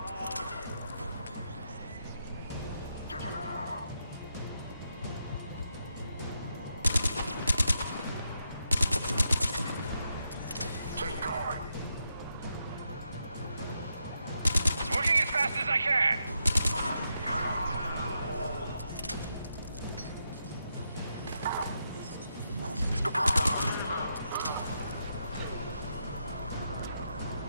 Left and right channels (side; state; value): both; inverted; correlation -0.82